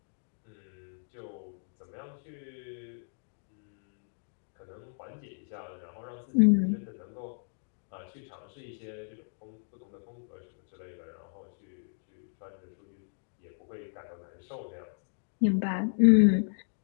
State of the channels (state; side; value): silent; right; digital silence